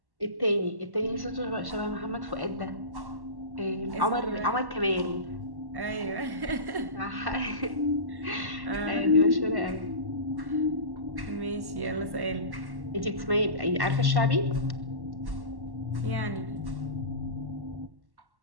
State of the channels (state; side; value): late; left; 1.1 ms